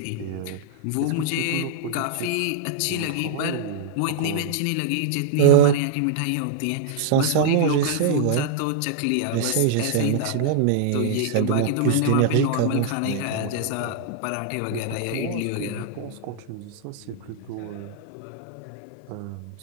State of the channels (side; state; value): both; different; correlation -0.01